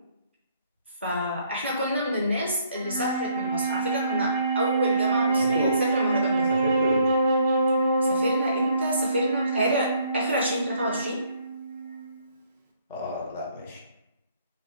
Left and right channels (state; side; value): inverted; both; correlation -0.66